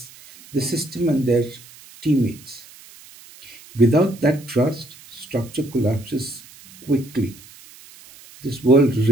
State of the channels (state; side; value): noise; right; hiss, 22 dB below the sound